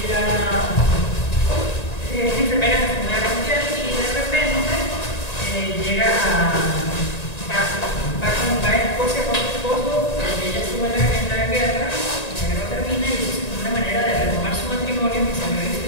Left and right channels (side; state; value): right; late; 1.9 ms